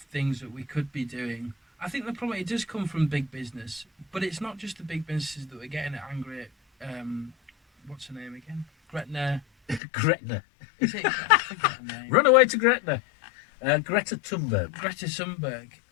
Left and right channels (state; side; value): drops out; right; at 9.8 s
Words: things that we could be doing. I think the problem, it does come from big business, but it's not just the big businesses that we're getting angry at. What's her name again? Gretna. Gretna. Is it? I forget her name. Run away to Gretna. Greta Thunberg. Greta Thunberg.